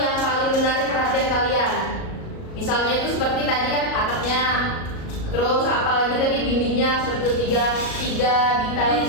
yang paling menarik perhatian kalian. Misalnya itu seperti tadi kan atapnya. Terus apalagi tadi dindingnya seperti itu, 3 detail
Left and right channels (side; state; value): right; late; 37 ms